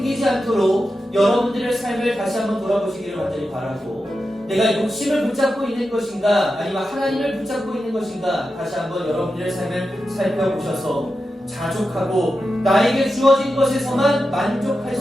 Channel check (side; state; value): both; normal; correlation 0.90